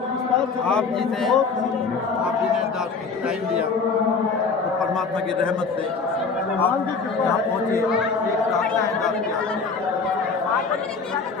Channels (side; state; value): right; quieter; 4.8 dB